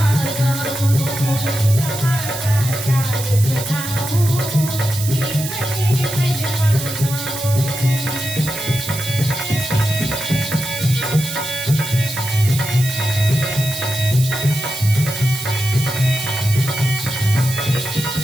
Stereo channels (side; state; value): right; noise; hiss, 7 dB below the sound